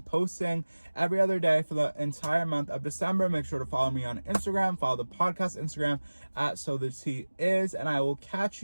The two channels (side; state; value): both; inverted; correlation -1.00